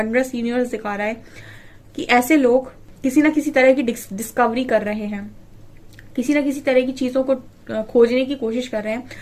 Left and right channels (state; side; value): identical; both; correlation 1.00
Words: यूनिवर्स दिखा रहा है कि ऐसे लोग किसी ना किसी तरह की डिस्कवरी कर रहे हैं, किसी ना किसी तरह की चीजों को खोजने की कोशिश कर रहे हैं,